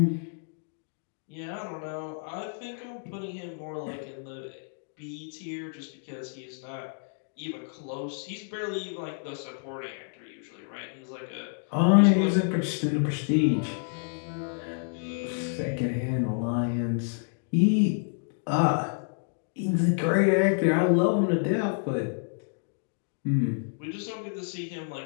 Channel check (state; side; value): silent; right; digital silence